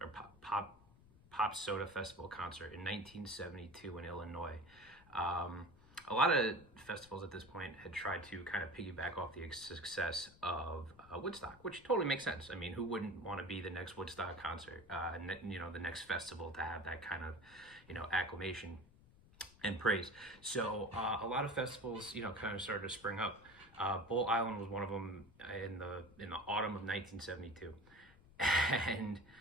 pop soda festival concert in 1972 in Illinois. A lot of festivals at this point had tried to kind of piggyback off the success of Woodstock, which totally makes sense. I mean, who wouldn't want to be the next Woodstock concert? The next festival to have that kind of, acclamation and praise. So a lot of festivals, kind of started to spring up. Bull Island was one of them in the autumn of 1972, and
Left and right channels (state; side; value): noise; left; rumble, 24 dB below the sound